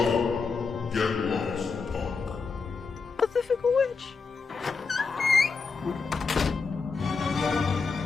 Get lost, punk. But the fickle witch.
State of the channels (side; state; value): right; quieter; 4.8 dB